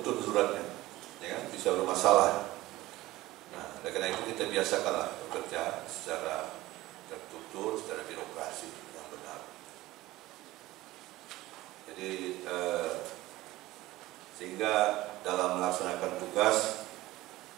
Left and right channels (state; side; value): quieter; left; 17.5 dB